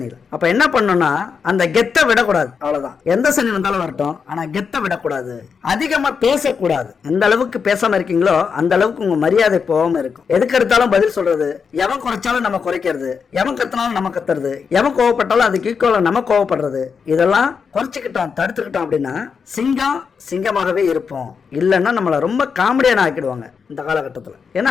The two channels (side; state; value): right; quieter; 6.0 dB